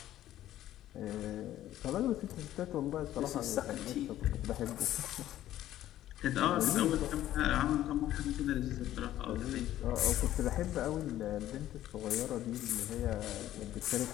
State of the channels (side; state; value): right; quieter; 13.2 dB